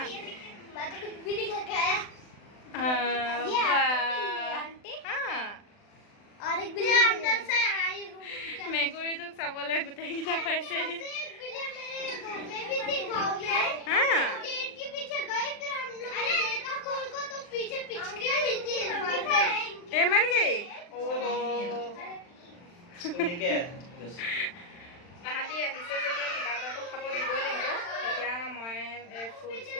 মেকুৰী তোক চাবলৈ গোটেইকেইটা পাইছে। मर गई। তাহাঁতি আহিছে যেতিয়া কিবা এটাতো খাব দিবই লাগিব। এতিয়া মই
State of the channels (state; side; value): late; right; 40 ms